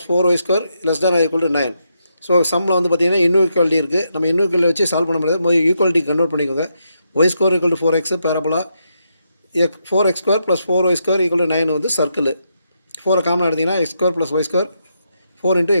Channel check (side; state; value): both; inverted; correlation -0.81